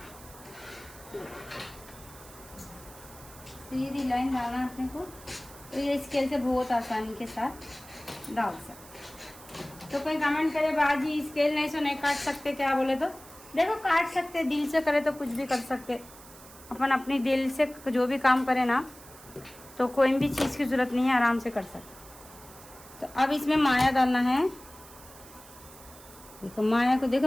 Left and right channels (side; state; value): right; noise; hiss, 19 dB below the sound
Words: सीधी लाइन डालना अपने को। तो ये स्केल से बहुत आसानी के साथ डाल सकते। तो कोई कमेंट करे बाजी स्केल नहीं से नहीं काट सकते क्या, बोले तो देखो काट सकते, दिल से करे तो कुछ भी कर सकते। अपन अपनी दिल से जो भी काम करे ना, तो कोई भी चीज़ की ज़रूरत नहीं है, आराम से कर सकते। तो अब इसमें माया डालना है, देखो माया को, देखो